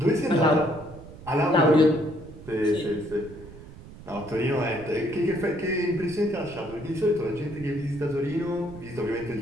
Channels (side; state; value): right; noise; rumble, 17 dB below the sound